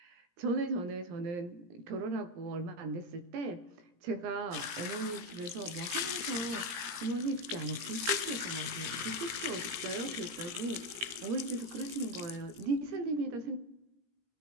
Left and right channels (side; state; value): left; late; 17 ms